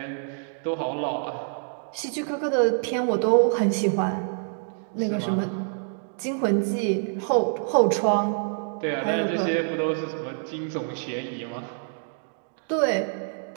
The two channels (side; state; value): left; silent; 61 dB below the other